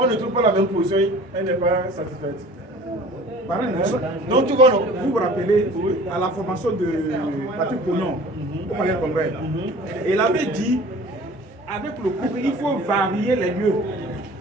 ne trouve pas la même position. Elle n'est pas satisfaite. Donc tu vois, vous vous rappelez à la formation de Patrick Pognon au Palais de Congrès. Et il avait dit, avec le couple, il faut varier les lieux.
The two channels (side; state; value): both; normal; correlation 0.46